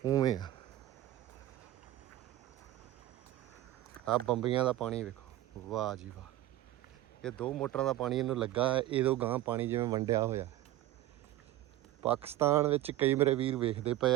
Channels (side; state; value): left; quieter; 14.7 dB